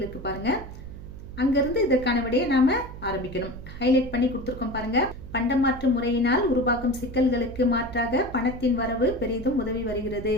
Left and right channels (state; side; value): noise; right; hum, 13 dB below the sound